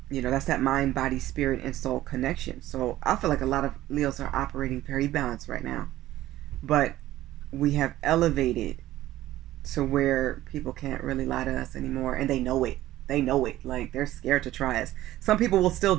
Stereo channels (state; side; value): quieter; left; 14.9 dB